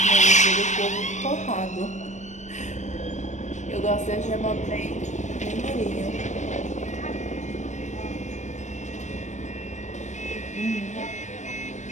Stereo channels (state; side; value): late; right; 0.34 ms